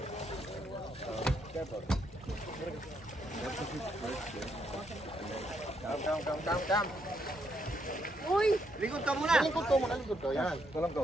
Come. Uy! Likod ka muna. Likod ko. Yan. Walang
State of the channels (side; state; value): both; normal; correlation 0.76